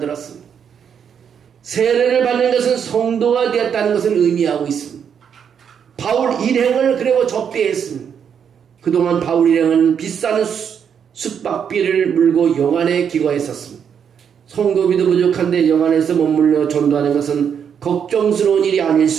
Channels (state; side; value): quieter; left; 7.7 dB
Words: 세례를 받는 것은 성도가 되었다는 것을 의미하고 있습니다. 바울 일행을 그리고 접대했습니다. 그동안 바울 일행은 비싼 숙박비를 물고 영안에 기거했었습니다. 성도비도 부족한데 영안에서 머물러 전도하는 것은 걱정스러운 일이 아닐